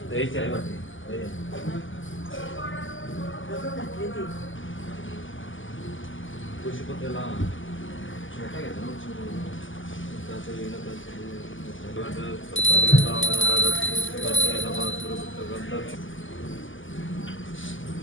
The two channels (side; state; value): right; late; 0.57 ms